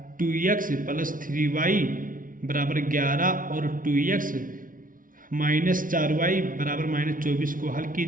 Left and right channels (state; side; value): late; left; 0.39 ms